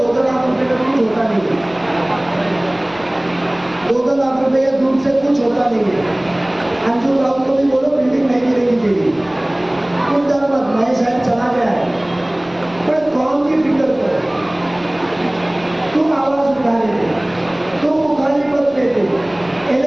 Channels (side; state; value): left; noise; rumble, 27 dB below the sound